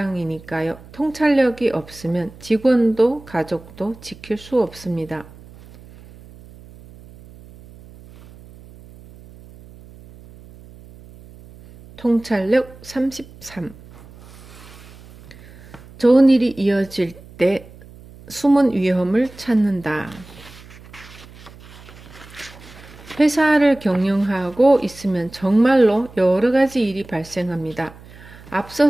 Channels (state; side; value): noise; right; hum, 21 dB below the sound